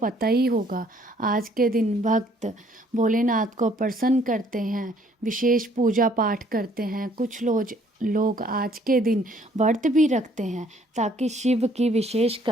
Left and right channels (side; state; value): both; normal; correlation 0.62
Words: ही होगा। आज के दिन भक्त भोलेनाथ को प्रसन्न करते हैं, विशेष पूजा पाठ करते हैं। कुछ लोग आज के दिन व्रत भी रखते हैं ताकि शिव की विशेष